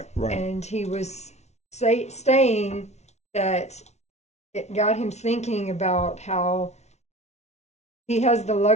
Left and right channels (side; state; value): right; late; 0.32 ms